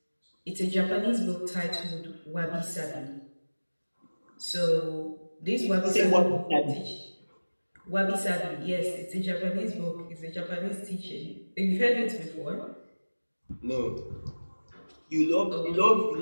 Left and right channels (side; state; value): both; inverted; correlation -1.00